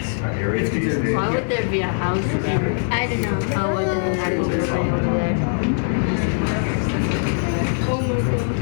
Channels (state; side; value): silent; right; 65 dB below the other